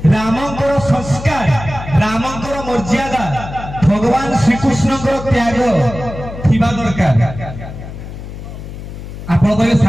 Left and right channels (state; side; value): noise; left; hum, 11 dB below the sound